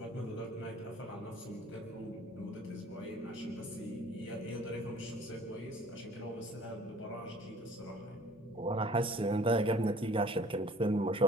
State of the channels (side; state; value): both; normal; correlation 0.52